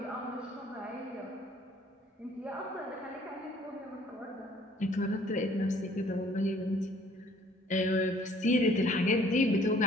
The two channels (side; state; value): both; normal; correlation 0.58